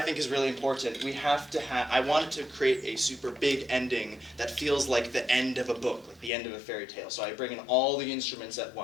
think is really important, we have to have, I wanted to create a super big ending that feels like the end of a book, like the end of a fairy tale. So I bring in all the instruments at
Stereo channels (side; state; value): right; drops out; at 6.3 s